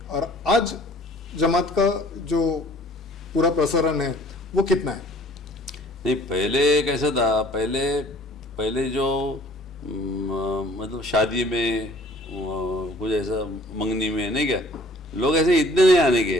और आज जमात का जो पूरा प्रसारण है वो कितना है? नहीं, पहले कैसा था, पहले जो मतलब शादी में कुछ ऐसा, मंगनी में, नहीं क्या, लोग ऐसे इतने नहीं आने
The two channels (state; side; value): normal; both; correlation 0.54